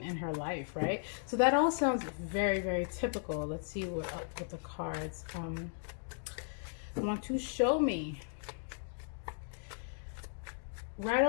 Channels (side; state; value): right; silent; digital silence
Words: in her life, right? So that all sounds very, very typical. Let's see what the cards want to show me. Right